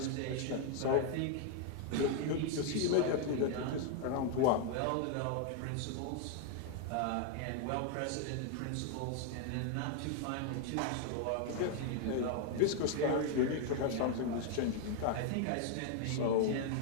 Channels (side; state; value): both; different; correlation 0.00